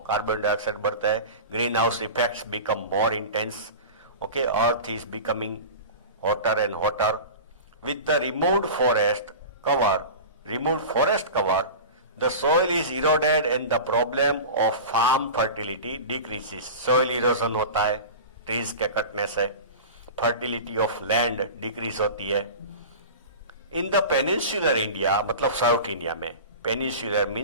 carbon dioxide बढ़ता है, green house effects become more intense, okay, earth is becoming hotter and hotter. With the removed forest cover, the soil is eroded and the problem of farm fertility decreases. Soil erosion होता है trees के कटने से, fertility of land decrease होती है. In the peninsular India, मतलब south India में, peninsular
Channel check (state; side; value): inverted; both; correlation -0.32